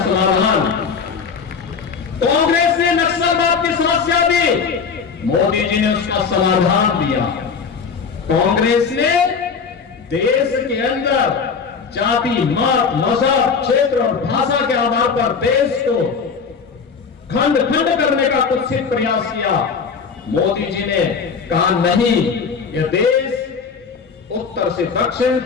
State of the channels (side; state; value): right; quieter; 5.7 dB